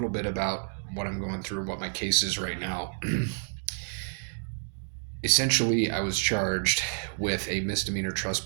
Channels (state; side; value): silent; left; digital silence